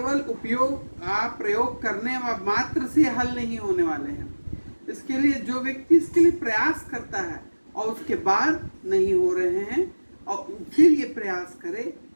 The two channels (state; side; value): inverted; both; correlation -1.00